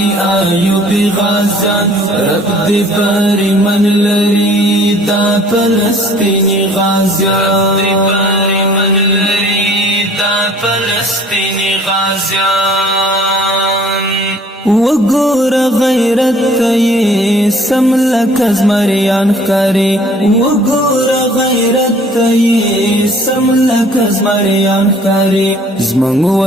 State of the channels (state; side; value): normal; both; correlation 0.54